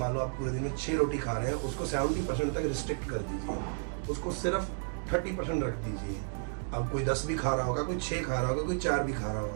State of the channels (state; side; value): silent; left; digital silence